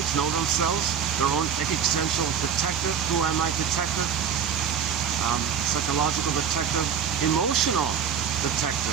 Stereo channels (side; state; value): left; quieter; 7.8 dB